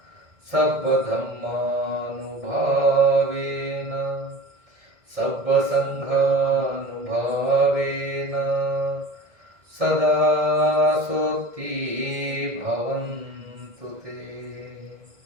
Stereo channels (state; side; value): late; left; 1.6 ms